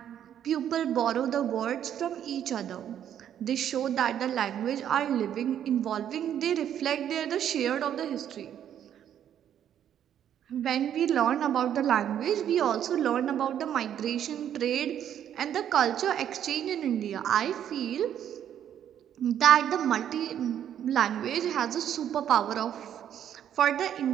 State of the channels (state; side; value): quieter; left; 9.9 dB